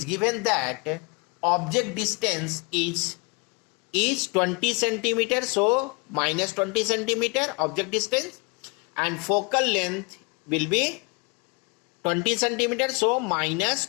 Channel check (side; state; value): right; quieter; 31.5 dB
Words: given that object distance is 20 centimeter. So minus 20 centimeter object distance, and focal length will be 20 centimeter. So minus